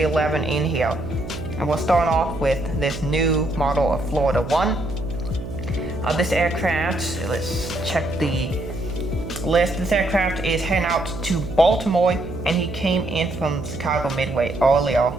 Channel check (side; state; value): right; noise; hum, 9 dB below the sound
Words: 11 in here. And we'll start off with this new model of Florida 1. This aircraft, let's check the list. This aircraft is heading out to Baltimore, and he came in from Chicago Midway earlier.